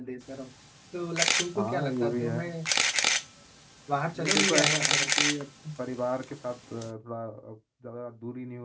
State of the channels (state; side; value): identical; both; correlation 1.00